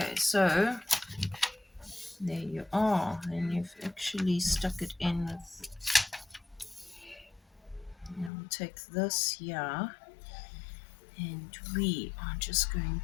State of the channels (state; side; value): drops out; right; at 8.3 s